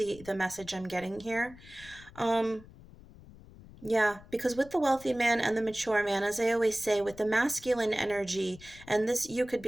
message I'm getting here. um yeah, because with the wealthy man and the mature man, as I always say, with the masculine energy, and this, you could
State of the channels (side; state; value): left; noise; rumble, 20 dB below the sound